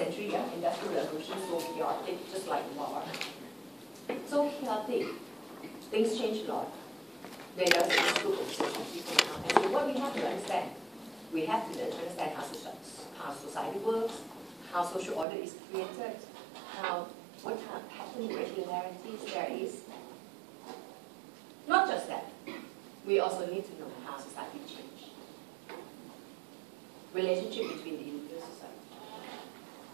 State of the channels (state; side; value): drops out; left; at 15.2 s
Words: yeah, industrial revolution, so chaotic, just like war. So chaotic. Things change a lot. There is this group of sociology coming out and say, what we have to understand? We have to understand how society works, how social order is created, what kind of pattern regularities there is. Not just that. We also need to know how society changes. Relationship between the individual society.